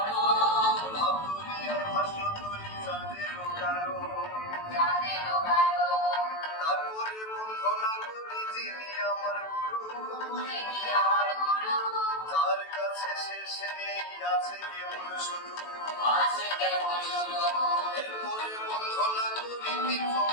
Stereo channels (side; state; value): right; late; 18 ms